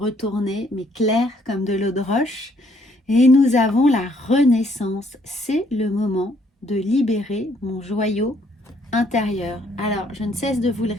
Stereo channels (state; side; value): normal; both; correlation 0.67